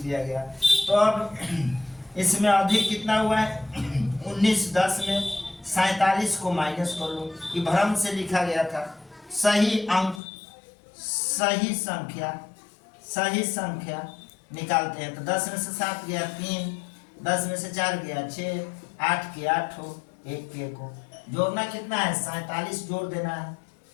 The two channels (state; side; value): drops out; right; at 10.2 s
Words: दिया गया, तो अब इसमें अधिक कितना हुआ है 19 10 में 47 को माइनस कर लो, ये भ्रम से लिखा गया था। सही अंक सही संख्या निकालते हैं, तो 10 में से 7 गया 3, 10 में से 4 गया 6, 8 के 8 हो 1 के 1 हो। जोड़ना कितना है 47 जोड़ देना है,